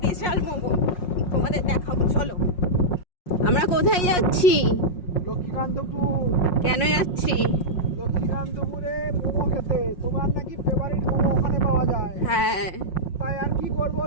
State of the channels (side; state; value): right; late; 5.5 ms